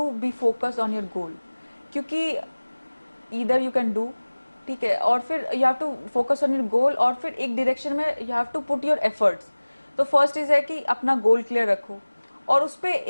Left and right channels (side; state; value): both; inverted; correlation -1.00